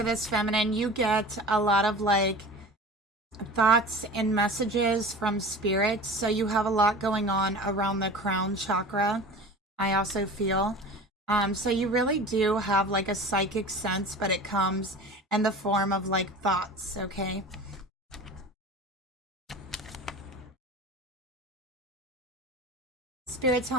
this feminine, you get a lot of like thoughts and messages from spirit. So you have a lot going on around the crown chakra. I also feel. So you really do have like a psychic sense, but it comes in the form of like thoughts, okay? Spirit,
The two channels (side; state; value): both; normal; correlation 0.36